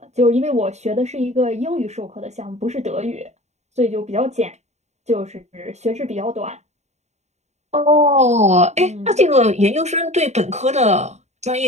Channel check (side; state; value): left; late; 0.32 ms